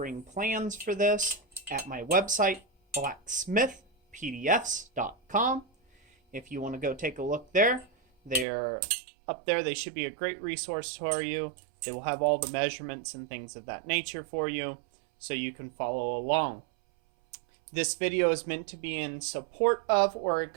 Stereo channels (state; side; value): drops out; left; at 8.5 s